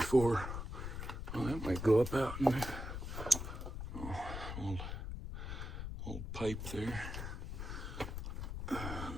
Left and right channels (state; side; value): noise; left; rumble, 5 dB below the sound